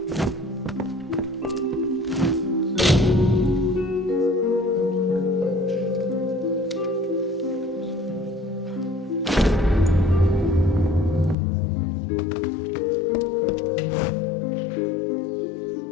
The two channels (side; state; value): right; drops out; at 11.4 s